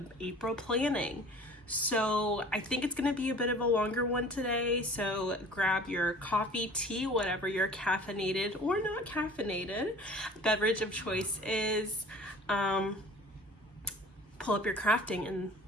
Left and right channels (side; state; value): both; normal; correlation 0.46